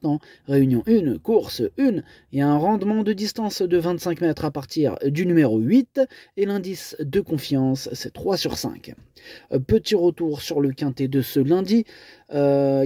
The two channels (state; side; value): identical; both; correlation 1.00